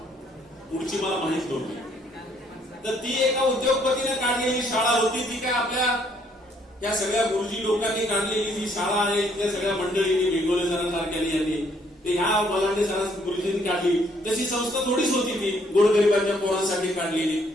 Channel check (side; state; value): both; normal; correlation 0.67